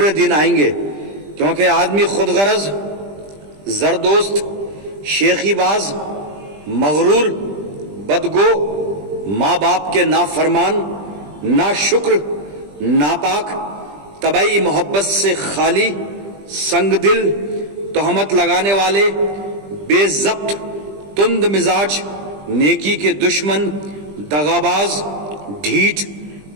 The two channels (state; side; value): late; left; 20 ms